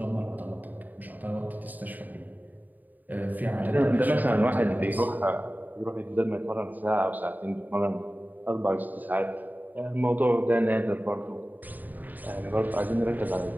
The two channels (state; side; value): late; left; 0.085 ms